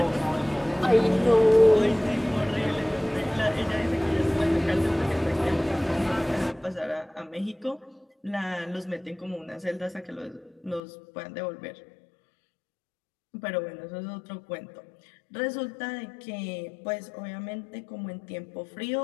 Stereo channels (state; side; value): drops out; right; at 10.8 s